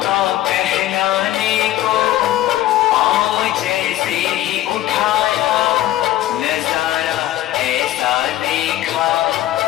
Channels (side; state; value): right; quieter; 14.2 dB